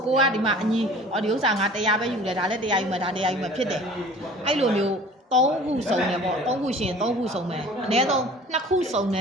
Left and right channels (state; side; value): normal; both; correlation 0.46